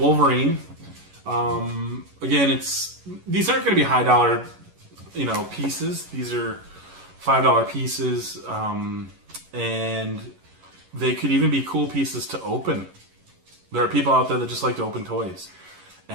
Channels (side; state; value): left; late; 11 ms